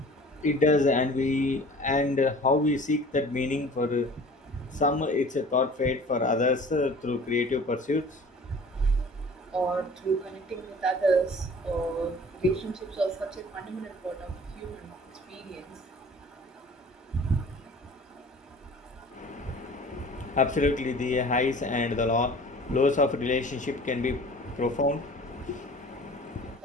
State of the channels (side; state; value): both; normal; correlation 0.46